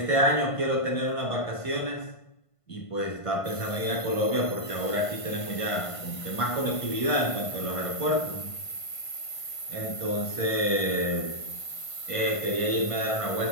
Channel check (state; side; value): late; right; 1.5 ms